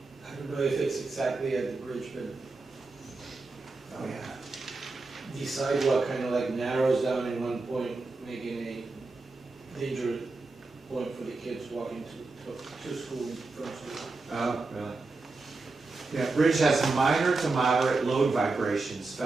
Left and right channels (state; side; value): quieter; left; 3.6 dB